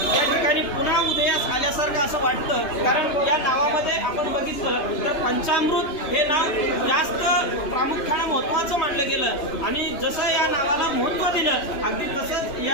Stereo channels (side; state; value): right; late; 2.9 ms